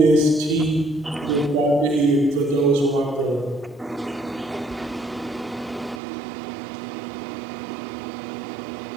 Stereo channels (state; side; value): drops out; left; at 6.0 s